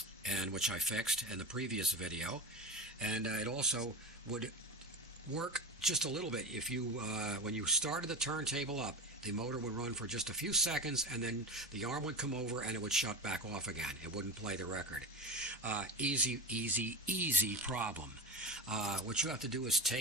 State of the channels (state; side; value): normal; both; correlation 0.23